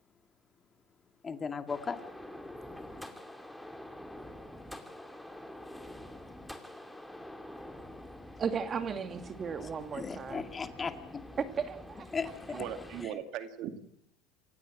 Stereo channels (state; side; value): normal; both; correlation 0.74